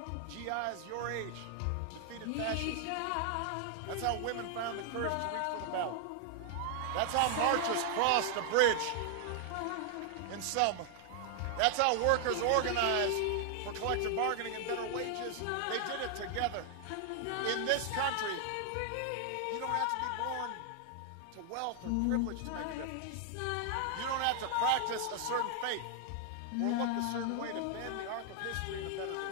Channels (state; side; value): different; both; correlation 0.00